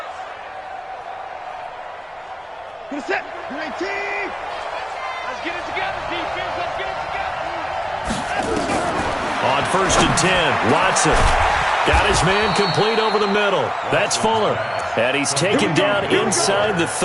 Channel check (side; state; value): both; identical; correlation 1.00